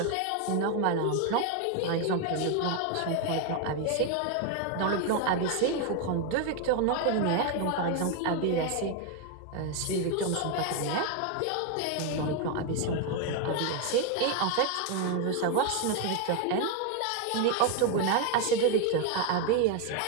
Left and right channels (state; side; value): different; both; correlation 0.01